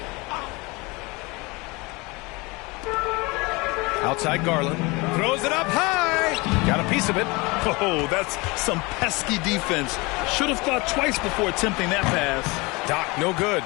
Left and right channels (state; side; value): quieter; right; 25.2 dB